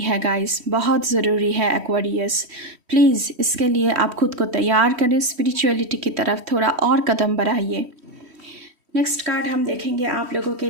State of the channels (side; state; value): left; late; 3.1 ms